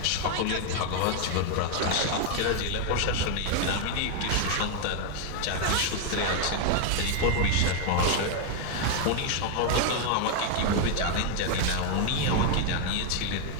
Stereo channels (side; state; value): both; different; correlation 0.00